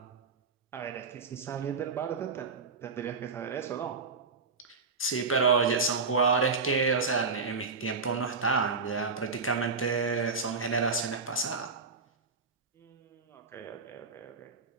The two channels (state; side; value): quieter; left; 4.6 dB